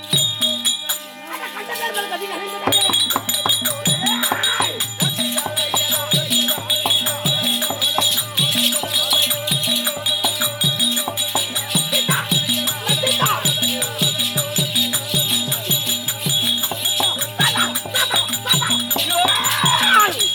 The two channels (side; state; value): both; identical; correlation 1.00